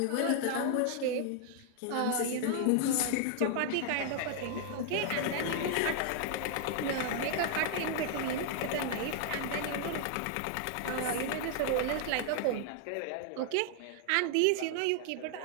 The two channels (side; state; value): both; different; correlation 0.00